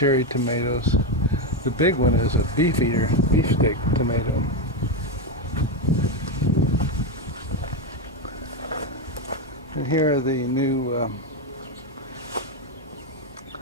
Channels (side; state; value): both; normal; correlation 0.08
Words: tomatoes. The big one is a beefsteak tomato. And here are the new